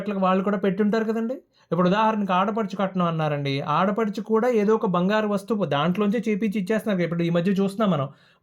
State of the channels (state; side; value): identical; both; correlation 1.00